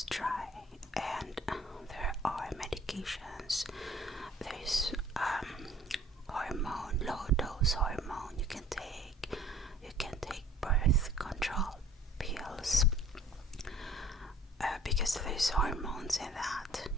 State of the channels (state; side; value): normal; both; correlation 0.52